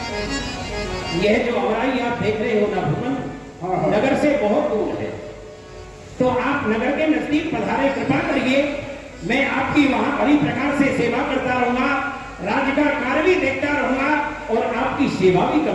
यह जो अमराई आप देख रहे हो ना भगवान, नगर से बहुत दूर है, तो आप नगर के नजदीक पधारे, कृपा करिए, मैं आपकी वहां बड़ी प्रकार से सेवा करता रहूंगा, राज्य का कार्य भी देखता रहूंगा और आपकी सेवा भी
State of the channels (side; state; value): both; identical; correlation 1.00